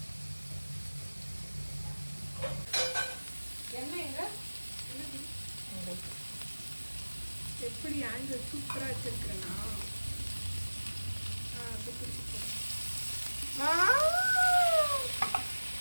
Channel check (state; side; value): inverted; both; correlation -1.00